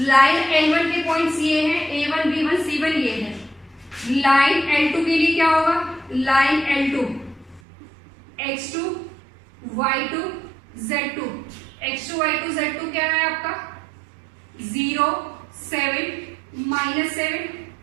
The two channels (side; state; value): left; drops out; at 7.6 s